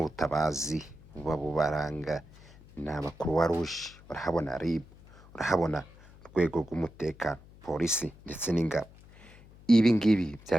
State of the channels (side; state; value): left; noise; hum, 23 dB below the sound